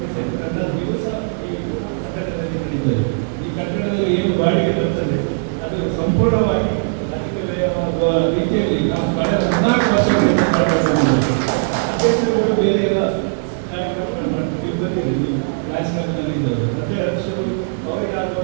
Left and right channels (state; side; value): silent; left; digital silence